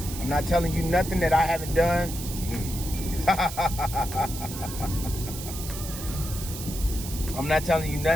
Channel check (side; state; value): right; noise; hiss, 9 dB below the sound